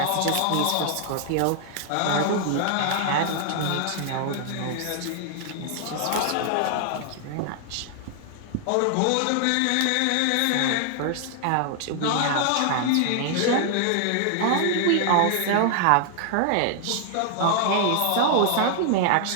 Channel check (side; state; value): both; different; correlation 0.00